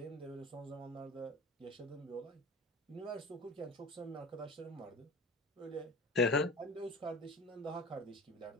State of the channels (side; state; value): both; normal; correlation 0.36